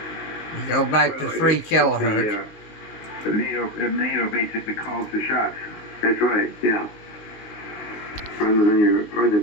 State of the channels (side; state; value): right; late; 19 ms